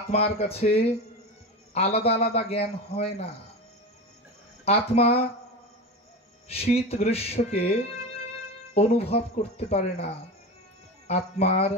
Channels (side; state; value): both; normal; correlation 0.25